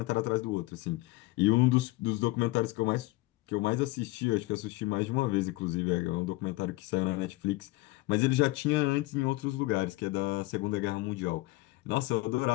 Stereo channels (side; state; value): right; quieter; 20.9 dB